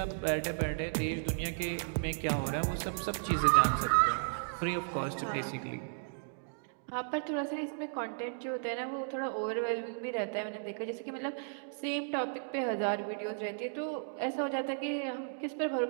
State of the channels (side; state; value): left; silent; digital silence